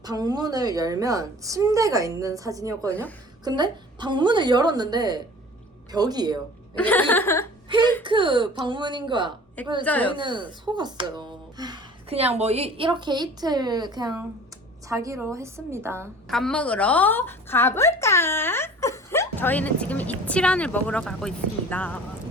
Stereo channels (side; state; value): both; normal; correlation 0.45